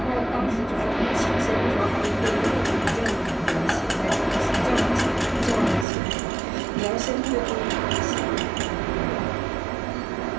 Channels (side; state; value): left; drops out; at 5.9 s